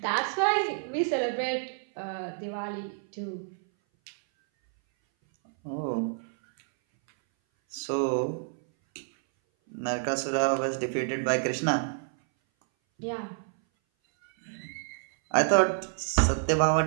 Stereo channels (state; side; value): silent; left; 58 dB below the other